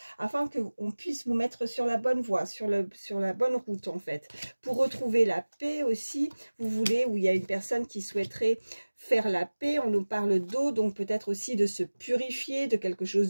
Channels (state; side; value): inverted; both; correlation -1.00